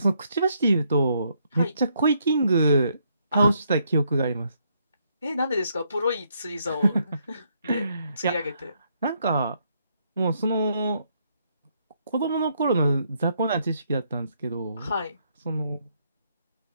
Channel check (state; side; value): inverted; both; correlation -0.73